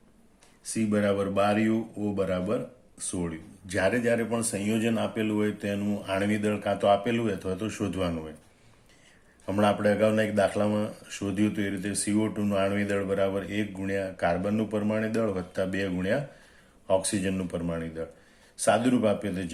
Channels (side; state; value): both; identical; correlation 1.00